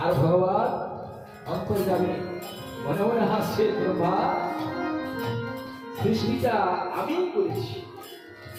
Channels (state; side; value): identical; both; correlation 1.00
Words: আর ভগবান অন্তর্যামী মনে মনে হাসছে, ব্রহ্মা সৃষ্টিটা আমিই করেছি,